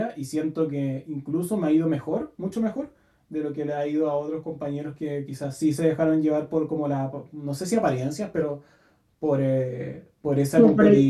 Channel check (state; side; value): identical; both; correlation 1.00